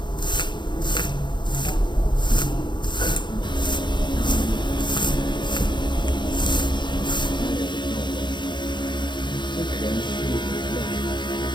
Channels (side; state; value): right; late; 0.22 ms